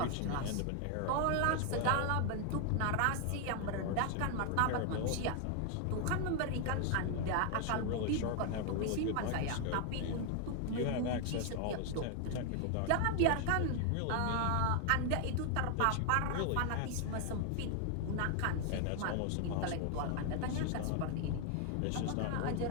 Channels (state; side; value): different; both; correlation 0.00